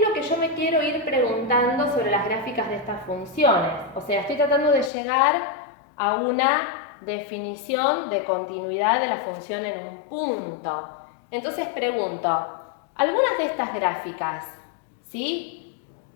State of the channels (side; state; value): right; drops out; at 4.9 s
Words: lo que yo me quiero ir preguntando sobre las gráficas de estas funciones? O sea, estoy tratando de llegar a una definición de continuidad de la función en un punto. Entonces pregunto, ¿algunas de estas gráficas, ¿sí?,